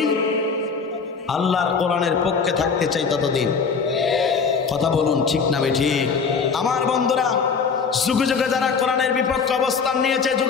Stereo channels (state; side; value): quieter; right; 5.5 dB